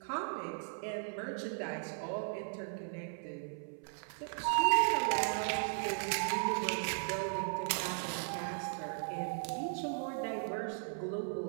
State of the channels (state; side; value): silent; left; 53 dB below the other